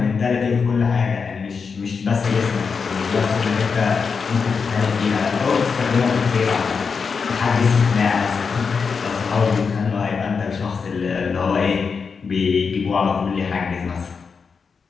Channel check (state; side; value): quieter; right; 5.5 dB